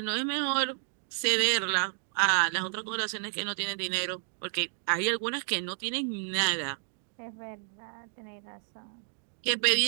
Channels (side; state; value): left; silent; 57 dB below the other